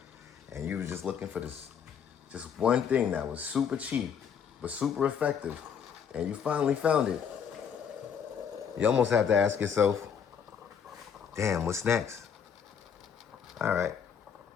and you were just looking for this, just one thing that was super cheap, but super effective, and you finally found it, you almost have to ask yourself, damn, what's next? All right,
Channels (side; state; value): right; quieter; 7.4 dB